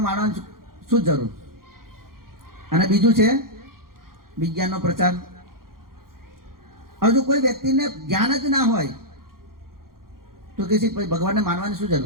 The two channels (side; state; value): left; late; 0.92 ms